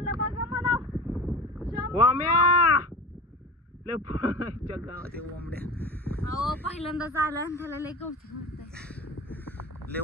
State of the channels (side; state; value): both; normal; correlation 0.33